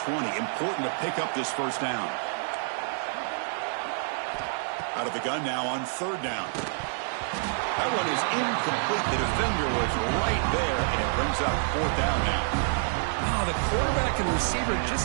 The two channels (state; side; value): silent; left; digital silence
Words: 20. Important to pick up this 1st down. Out of the gun now on 3rd down. That one is incomplete. The defender was right there, and it brings up 4th down now. Oh, the quarterback and receiver